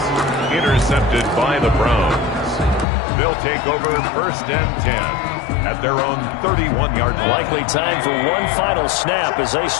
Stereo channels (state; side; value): drops out; right; at 2.9 s